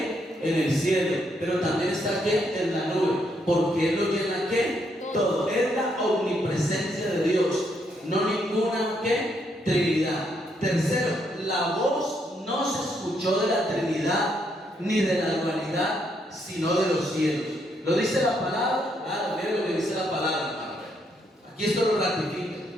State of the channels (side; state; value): both; normal; correlation 0.75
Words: en el cielo, pero también está aquí en la nube, porque Él lo llena ¿qué? Todo. Es la omnipresencia de Dios, no ninguna ¿qué? Trinidad. Tercero, la voz no se escuchó de la Trinidad ni de la dualidad, sino de los cielos. ¿Lo dice la palabra? Ah, miren lo que dice la palabra, hermano. Aquí esto lo ratifica,